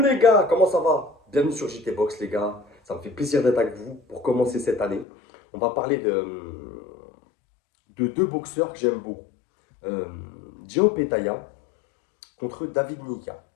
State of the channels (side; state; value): right; drops out; at 5.1 s